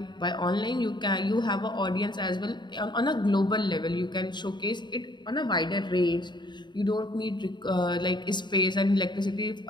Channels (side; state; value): right; late; 0.22 ms